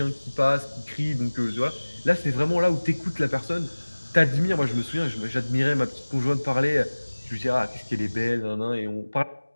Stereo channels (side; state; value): both; inverted; correlation -1.00